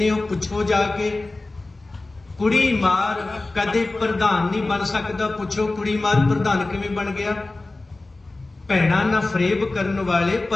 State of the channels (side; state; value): right; quieter; 3.1 dB